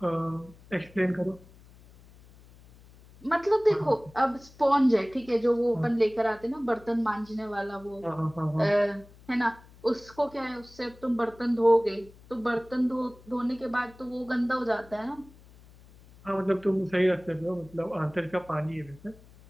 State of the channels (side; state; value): left; noise; hum, 24 dB below the sound